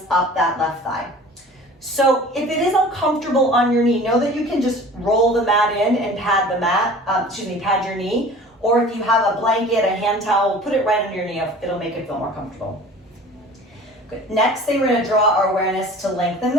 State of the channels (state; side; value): normal; both; correlation 0.43